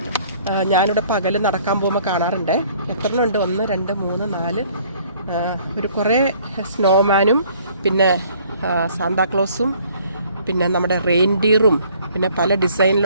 ഞാനിവിടെ പകൽ നടക്കാൻ പോകുമ്പോൾ കാണാറുണ്ട്. എത്രണ്ണം ഉണ്ട്? 1 2 3 4 ഒരു കുറേ സ്നോമാനും പിന്നെ സാന്താക്ലോസും പിന്നെ നമ്മുടെ റെയിൻഡിയറും പിന്നെ പല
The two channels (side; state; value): both; inverted; correlation -0.59